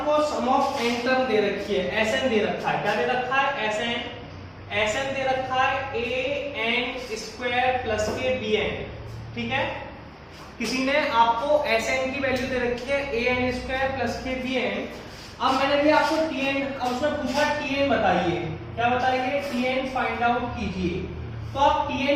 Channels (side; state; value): both; identical; correlation 1.00